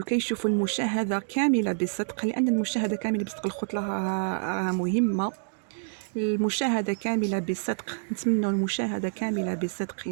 المشاهدة كاملة بصدق، لأن المشاهدة كاملة بصدق الخطلة راها مهمة. المشاهدة كاملة بصدق، نتمنى المشاهدة كاملة بصدق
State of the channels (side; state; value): left; silent; digital silence